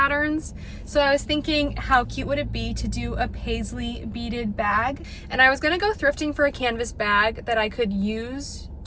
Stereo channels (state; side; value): identical; both; correlation 1.00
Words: So I was thinking, how cute would it be to do a paisley beaded bag? And I was gonna go thrifting for a canvas bag that I could use